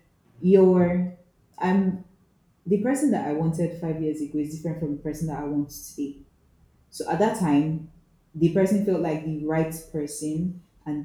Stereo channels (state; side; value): identical; both; correlation 1.00